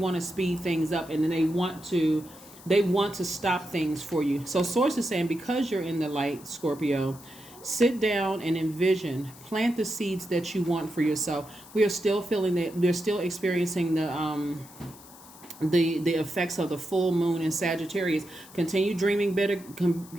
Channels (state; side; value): noise; left; hiss, 20 dB below the sound